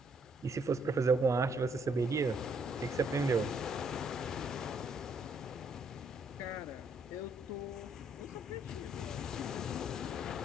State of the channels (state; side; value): normal; both; correlation 0.69